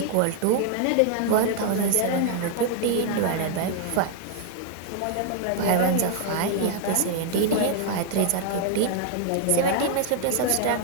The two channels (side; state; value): both; different; correlation 0.00